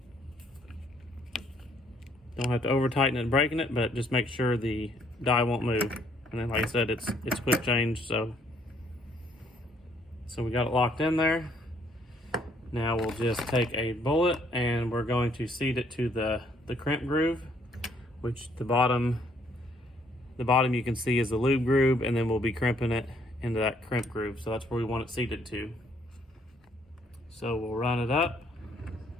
Don't have to over tighten it and breaking it, but just make sure the die won't move. And then like I said, it's quick change, so we got it locked in there. Now we'll just take a bullet and we're going to seat it to the crimp groove, which the bottom you can see is the lube groove, and then we'll be crimping it into that crimp groove. So that's where we want it seated to. So we'll run it up.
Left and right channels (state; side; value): normal; both; correlation 0.67